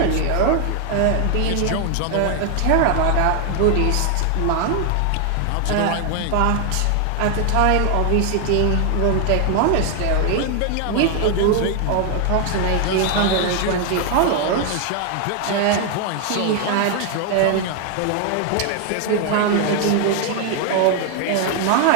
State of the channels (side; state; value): both; different; correlation 0.00